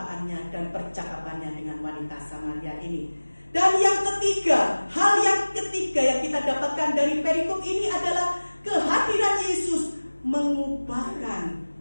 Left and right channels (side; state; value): both; inverted; correlation -1.00